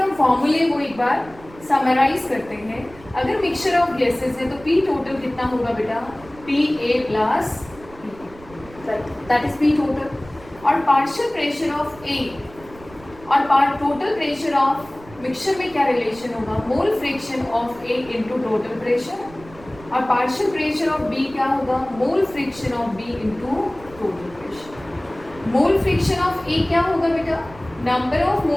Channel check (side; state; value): right; noise; rumble, 21 dB below the sound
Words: फॉर्मूले को एक बार समराइज करते हैं. अगर मिक्सचर ऑफ गैसेस है तो P टोटल कितना होगा बेटा? PA plus that is P total. और पार्शियल प्रेशर ऑफ A और टोटल प्रेशर ऑफ मिक्सचर में क्या रिलेशन होगा? मोल fraction of A into total pressure. और पार्शियल प्रेशर ऑफ B क्या होगा? मोल fraction of B into total pressure. Mole fraction of A क्या होगा बेटा? Number of